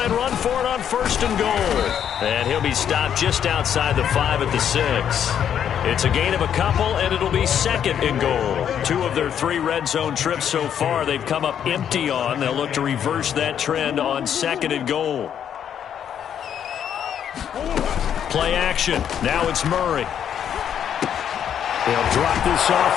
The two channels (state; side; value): quieter; right; 9.0 dB